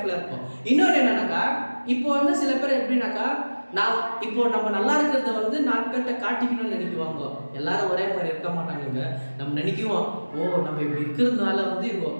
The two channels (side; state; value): both; inverted; correlation -1.00